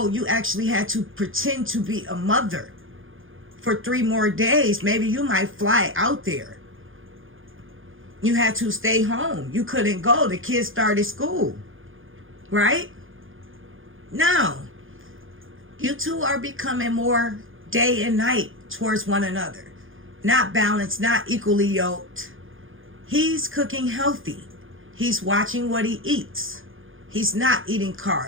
You actually had to pretend to be a mother for 3 more days. Maybe you might fly out there. You had to stay home. You couldn't go. The kids started school. Right? Now, you two are becoming more day and night towards one another. Not balanced, not equally yoked. He's cooking healthy. He's watching what he eats. He's not eating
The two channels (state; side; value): late; left; 0.58 ms